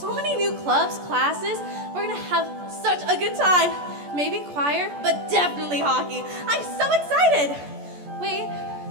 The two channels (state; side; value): late; left; 14 ms